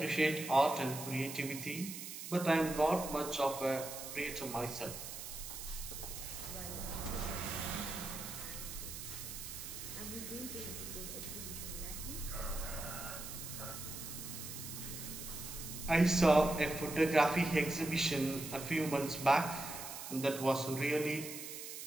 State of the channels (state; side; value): noise; right; hiss, 8 dB below the sound